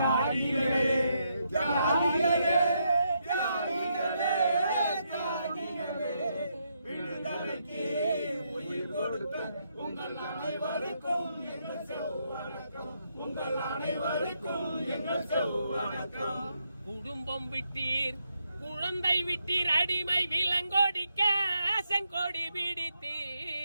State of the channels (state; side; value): inverted; both; correlation -0.78